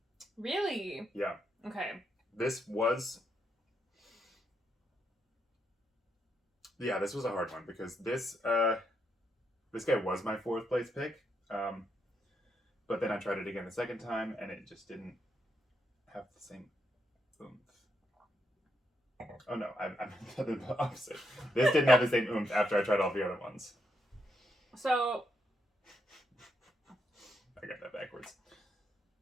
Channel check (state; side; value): normal; both; correlation 0.79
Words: Really? Yeah. Okay. This was. Yeah, this was a hard one because this guy was my fourth place pick, but then I tried it again the second time and it just didn't have the same oomph. Oh no, I meant the opposite. This didn't have the same oomph after I tried all the other ones. So I got that backwards.